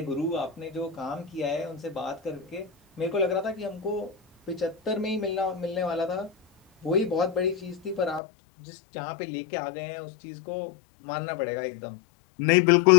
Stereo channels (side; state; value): right; drops out; at 8.2 s